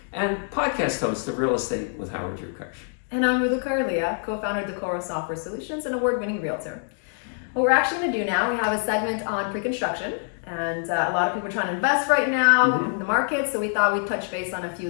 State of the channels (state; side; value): silent; right; 56 dB below the other